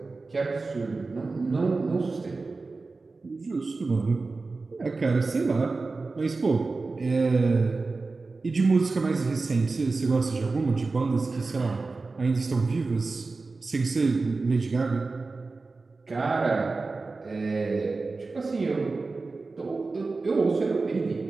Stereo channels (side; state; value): left; quieter; 3.8 dB